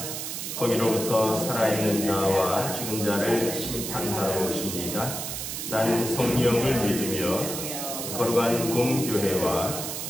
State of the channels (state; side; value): noise; right; hiss, 5 dB below the sound